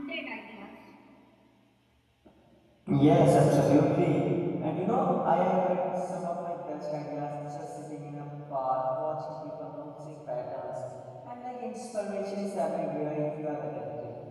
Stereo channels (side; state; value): both; identical; correlation 1.00